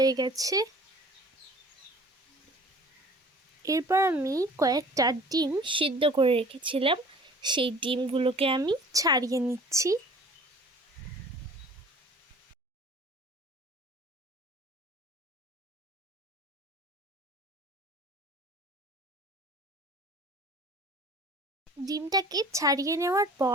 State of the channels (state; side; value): normal; both; correlation 0.47